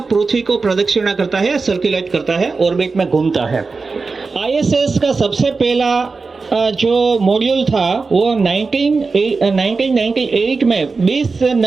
पृथ्वी को प्रदक्षिणा करता है, सर्कुलेट करता है, ऑर्बिट में घूमता है. ISS का सबसे पहला जो मॉड्यूल था वो 1998 में 20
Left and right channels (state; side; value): quieter; left; 4.3 dB